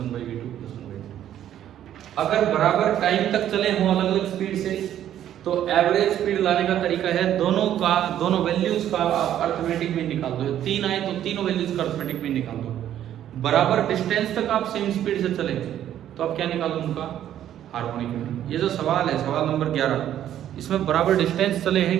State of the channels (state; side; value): quieter; left; 11.2 dB